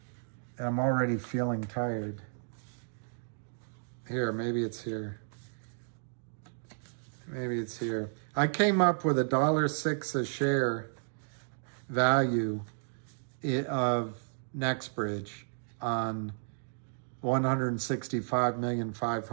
already feeling tired. Here, maybe it's here. Maybe it's here. I came up with $1.06 a share value of NextBridge on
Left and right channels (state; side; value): silent; left; digital silence